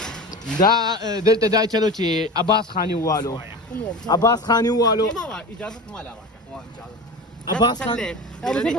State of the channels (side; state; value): both; normal; correlation 0.30